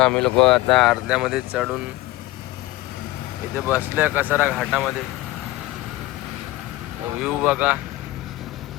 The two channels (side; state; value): right; quieter; 18.2 dB